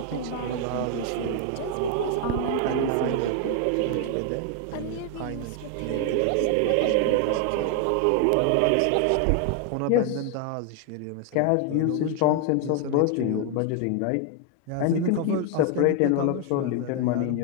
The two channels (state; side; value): different; both; correlation 0.00